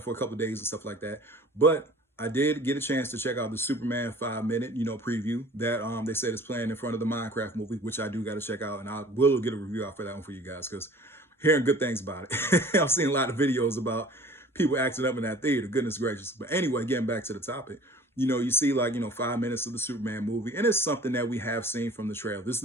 a couple of days and stuff like that. But I did get a chance to check out the Superman 5 minute, preview that they said is playing in front of the Minecraft movie, which I do got to check out, and I will get a review out for that one for you guys because hearing good things about it. I've seen a lot of videos about people acting up in that theater. Goodness gracious. But anyway, getting back to the topic, you see 5 minutes of the Superman movie, and it's something that we have seen from the trailer. This is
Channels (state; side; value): normal; both; correlation 0.47